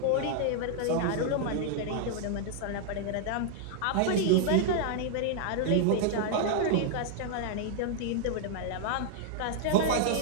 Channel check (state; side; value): different; both; correlation 0.00